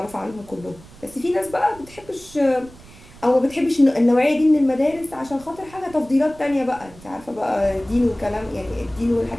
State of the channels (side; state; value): right; noise; rumble, 21 dB below the sound